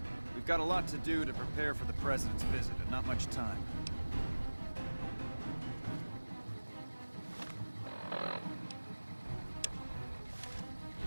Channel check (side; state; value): both; inverted; correlation -1.00